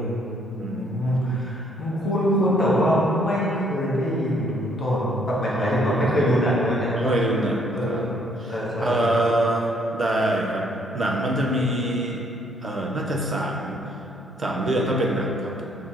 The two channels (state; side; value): normal; both; correlation 0.66